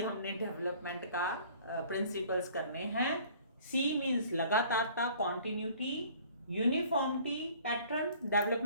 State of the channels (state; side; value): inverted; both; correlation -0.52